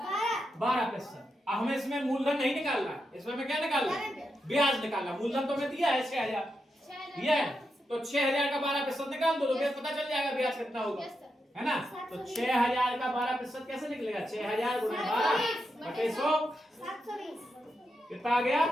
12%। अब हमें इसमें मूलधन नहीं निकालना, इसमें हमें क्या निकालना है, ब्याज निकालना। मूलधन तो हमें दिया है 6000 दिया है, तो 6000 का 12% निकाल दो तो फिर पता चल जाएगा ब्याज कितना होगा, है ना। तो 6000 का 12% कैसे निकलेगा, 6000 गुणे 12 बटे 100, कितना आ गया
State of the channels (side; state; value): both; normal; correlation 0.86